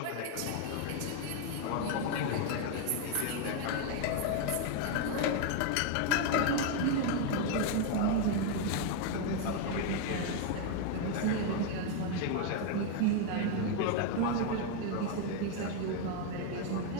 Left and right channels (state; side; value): different; both; correlation 0.01